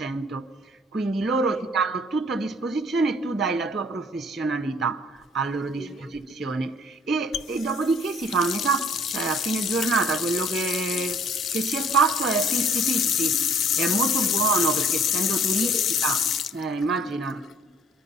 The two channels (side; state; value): both; normal; correlation 0.57